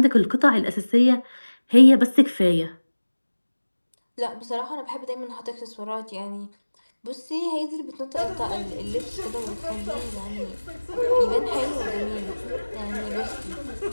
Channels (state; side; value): inverted; both; correlation -1.00